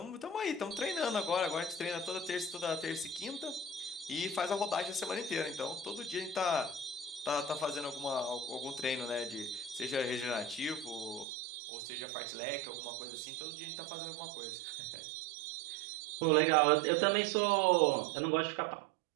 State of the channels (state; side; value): drops out; left; at 11.2 s